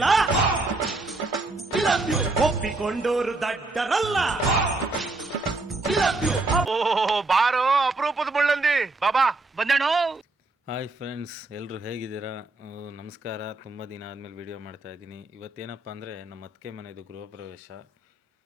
ಒಪ್ಪಿಕೊಂಡೋರು ದಡ್ಡರಲ್ಲ. ಬಾರೋ ಅಪರೂಪದ ಮುಳ್ಳಂದಿ ಬಾಬಾ ಬಂದೇಣು. ಹಾಯ್ ಫ್ರೆಂಡ್ಸ್, ಎಲ್ಲರೂ ಹೇಗಿದ್ದೀರಾ? ನಮಸ್ಕಾರ. ತುಂಬ ದಿನ ಆದಮೇಲೆ ವೀಡಿಯೋ ಮಾಡ್ತಾಯಿದ್ದೀನಿ. ಇವತ್ತೇನಪ್ಪ ಅಂದರೆ ನಮ್ಮ ಅತ್ತಿಗೆ ಮನೆಯದು ಗೃಹ ಪ್ರವೇಶ.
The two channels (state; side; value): quieter; left; 3.2 dB